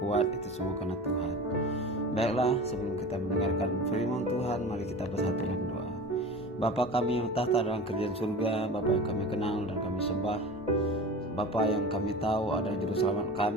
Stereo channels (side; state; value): both; normal; correlation 0.34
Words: itu semua karena Tuhan. Baiklah, sebelum kita mendengarkan firman Tuhan, mari kita bersatu dalam doa. Bapa kami yang tahta dalam kerajaan surga, Bapa yang kami kenal dan kami sembah, Bapa yang kami tahu adalah juru selamat